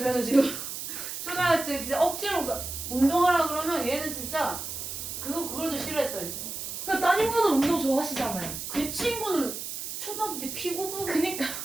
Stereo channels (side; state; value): right; noise; hiss, 6 dB below the sound